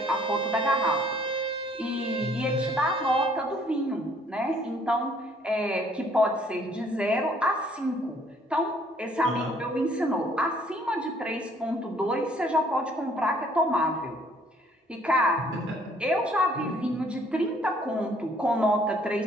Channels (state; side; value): normal; both; correlation 0.61